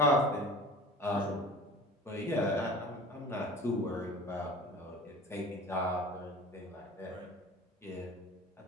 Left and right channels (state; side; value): normal; both; correlation 0.40